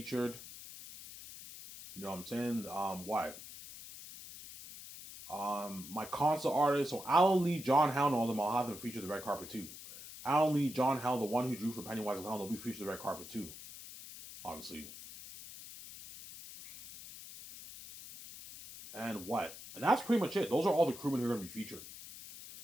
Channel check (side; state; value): left; noise; hiss, 13 dB below the sound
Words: You know what I'm saying? My console artist, so Alan Lee, John Howell, and all of them, I'll have them featured the red carpet too. Alan Lee, John Howell, the one who drew for Pennywise and Clown, they'll be featured the red carpet too. Obviously. And what? And that's pretty much it. Those are all the crewmen who are going to be featured.